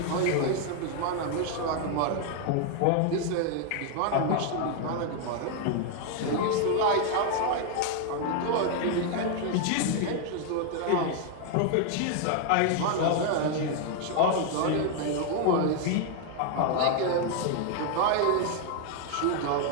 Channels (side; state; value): both; different; correlation 0.00